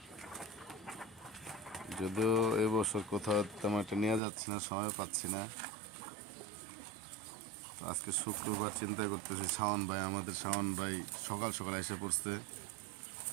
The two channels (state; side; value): drops out; left; at 4.2 s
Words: যদিও এবছর কোথাও তেমন একটা নিয়ে যাচ্ছি না, সময় পাচ্ছি না। তো আজকে শুক্রবার চিন্তা করতেছি, আমাদের শাওন ভাই সকাল সকাল এসে পড়ছে।